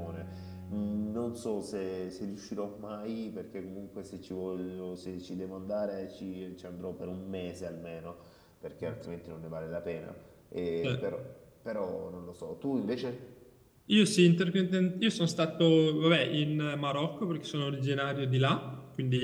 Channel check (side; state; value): both; identical; correlation 1.00